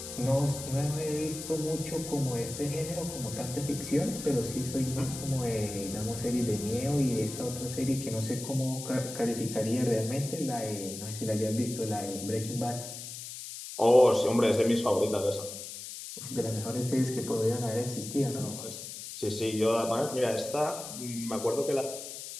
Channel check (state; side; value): noise; left; hiss, 10 dB below the sound